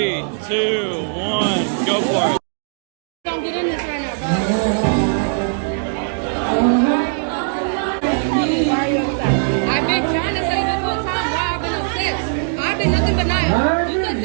2, 1, go for it. Don't get in this right now, bro. I've been trying to say this whole time why I've been upset. I've been nothing but nice. You said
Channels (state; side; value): silent; left; digital silence